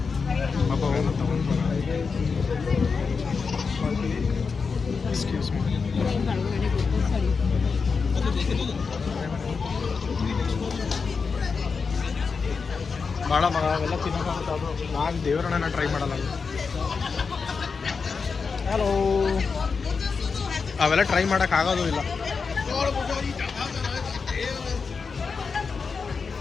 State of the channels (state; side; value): quieter; right; 5.1 dB